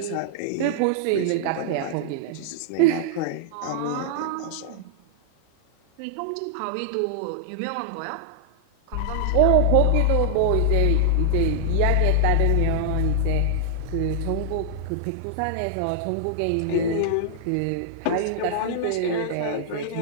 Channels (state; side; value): different; both; correlation -0.01